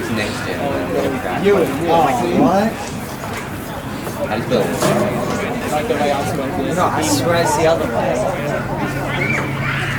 next gen, I'm gonna crash. Ewan. Oh, what? How do you spell it? Like the way I'm smoking. No, I swear it's the other way.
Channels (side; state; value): both; identical; correlation 1.00